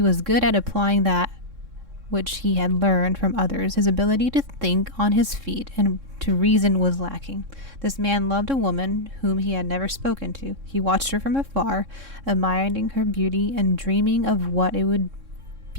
was good at applying that which he had learned from others, his ability to think on his feet and to reason was lacking. This man loved a woman whom he had never spoken to. He watched her from afar, admiring her beauty and dreaming of what it would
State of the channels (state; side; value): late; left; 3.6 ms